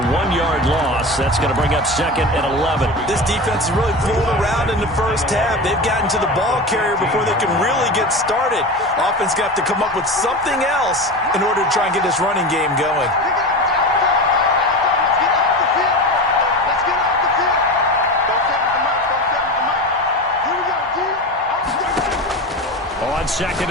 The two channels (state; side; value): normal; both; correlation 0.26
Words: loss. That's going to bring up 2nd and 11. This defense is really fooling around in the first half. They've gotten to the ball carrier before they can really get started. Offense going to have to come up with something else in order to try and get this running game going. On 2nd